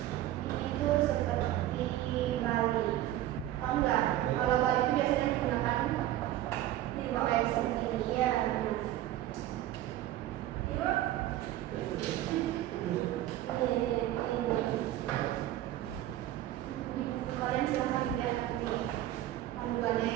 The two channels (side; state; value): left; quieter; 13.9 dB